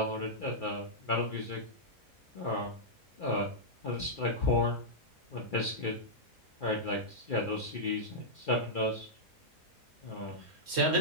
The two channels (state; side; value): normal; both; correlation -0.09